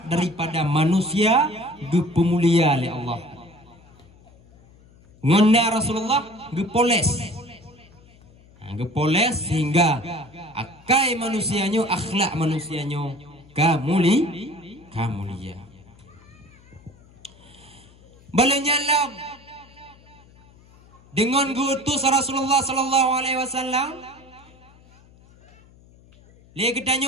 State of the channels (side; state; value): left; noise; hum, 26 dB below the sound